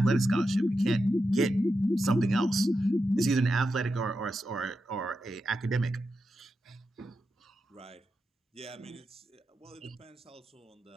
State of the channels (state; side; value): normal; both; correlation 0.88